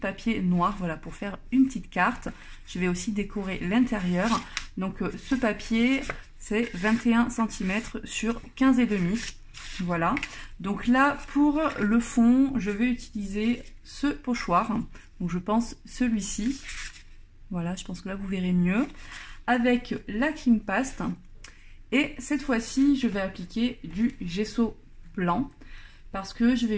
noir, voilà, pour faire une petite carte. Je vais aussi décorer l'intérieur. Donc ce papier, c'est 21 cm sur 15,5. Voilà. Donc là, pour le fond, je vais utiliser ce pochoir. Donc je pense celui-ci. Voilà, je pense que là, vous verrez mieux. Avec la Clean Paste. Et cette fois-ci, je vais appliquer du gesso blanc, parce que je vais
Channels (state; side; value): identical; both; correlation 1.00